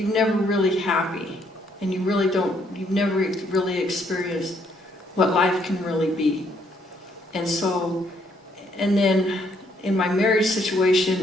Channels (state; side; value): normal; both; correlation 0.69